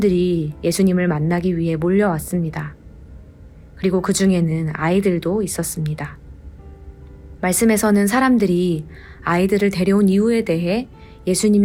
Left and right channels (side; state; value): both; identical; correlation 1.00